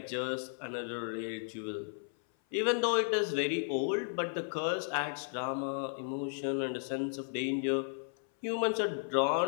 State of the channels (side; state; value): right; silent; 55 dB below the other